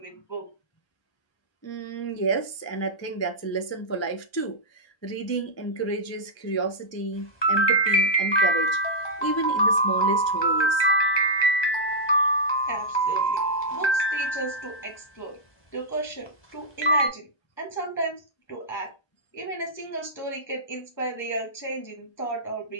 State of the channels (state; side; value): late; right; 1.3 ms